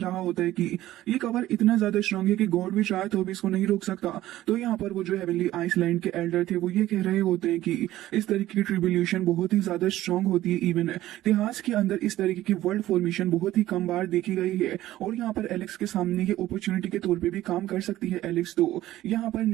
होता है कि ये कवर इतना ज्यादा स्ट्रांग है कि गॉड भी चाहे तो भी इसको नहीं रोक सकता। तो यहाँ पर वो जो हेवनली आइसलैंड के एल्डर थे वो ये कह रहे होते हैं कि इस तरीके की ट्रिब्यूलेशन बहुत ही ज्यादा स्ट्रांग होती है। इवन इतिहास के अंदर इस तरीके की वर्ल्ड फॉर्मेशन बहुत ही कम बार देखी गई है और यहाँ पर एलेक्स के सामने ये अपॉर्चुनिटी के तौर पर भी काम कर सकती है। एलेक्स तो यहाँ पर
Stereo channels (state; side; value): quieter; left; 14.8 dB